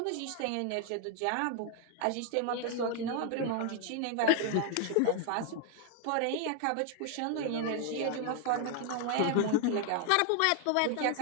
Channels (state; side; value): different; both; correlation 0.00